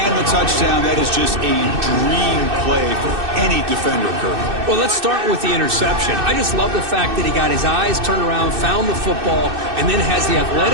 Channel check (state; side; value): late; left; 2.6 ms